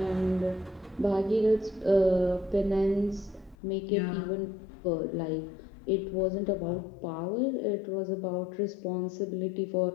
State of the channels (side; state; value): right; drops out; at 3.6 s